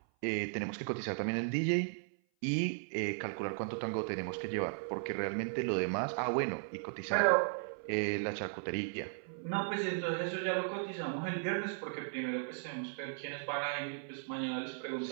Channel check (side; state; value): left; silent; 54 dB below the other